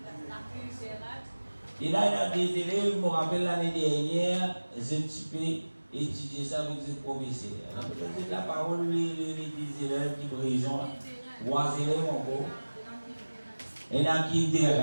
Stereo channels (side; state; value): both; inverted; correlation -1.00